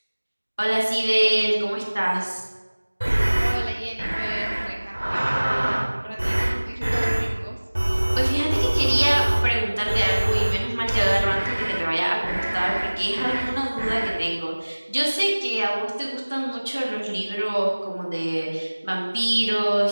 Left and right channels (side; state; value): both; inverted; correlation -1.00